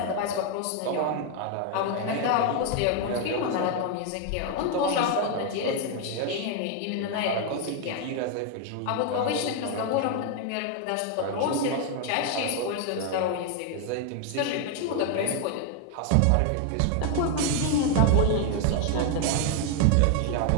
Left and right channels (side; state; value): both; different; correlation 0.01